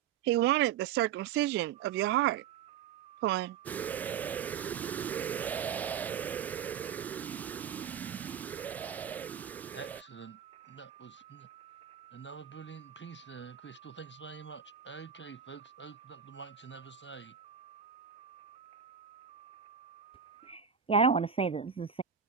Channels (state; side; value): quieter; left; 8.2 dB